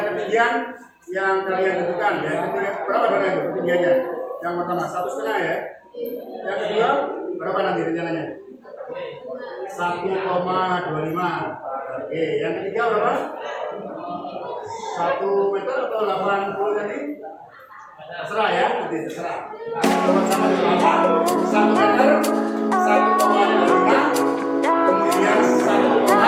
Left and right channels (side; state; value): both; identical; correlation 1.00